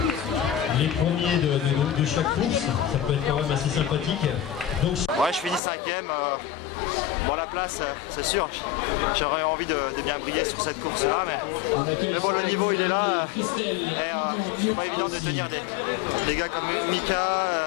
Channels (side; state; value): right; drops out; at 5.6 s